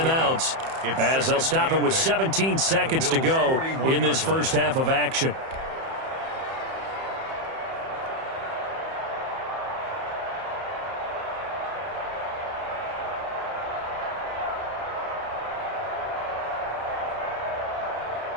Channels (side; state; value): left; late; 31 ms